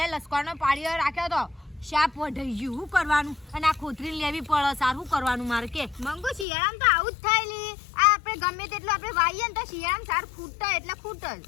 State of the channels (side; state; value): right; drops out; at 6.5 s